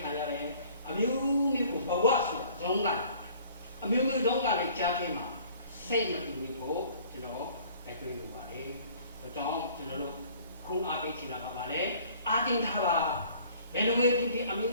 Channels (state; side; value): inverted; both; correlation -0.53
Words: ခံရတယ်အမျိုးမျိုးကိုဘဝဆိုတာဇုံးကအမျိုးမျိုးဇုံးကလည်းကြားထဲမှာစိတ်မတူဘူးဖို့ကျွန်တော်တိုက်တွန်းလိုပါတယ်ဒါကြောင့်ကျွန်တော်တို့ခုအားပေးချင်တာကပါလေအားတင်ထားပါဘယ်လိုပဲဖြစ်ဖြစ်အမျိုး